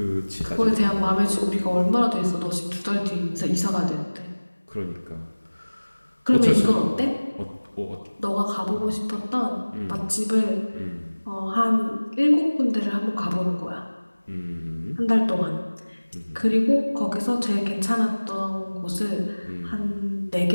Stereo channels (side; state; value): both; inverted; correlation -1.00